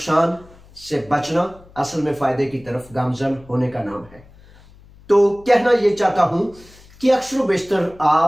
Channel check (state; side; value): noise; left; hum, 25 dB below the sound